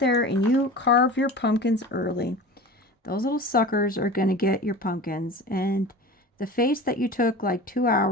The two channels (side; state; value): both; normal; correlation 0.35